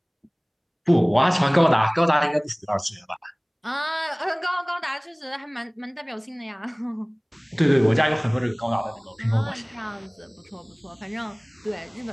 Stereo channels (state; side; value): identical; both; correlation 1.00